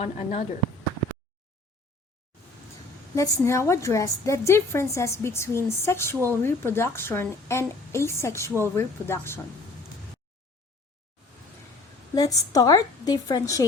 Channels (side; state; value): right; quieter; 3.2 dB